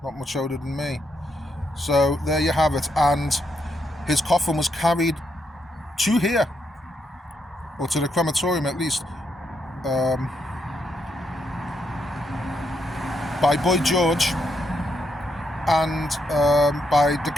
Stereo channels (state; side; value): normal; both; correlation 0.79